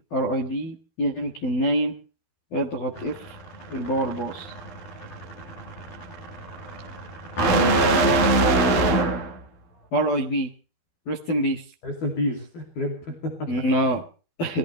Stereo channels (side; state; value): right; late; 12 ms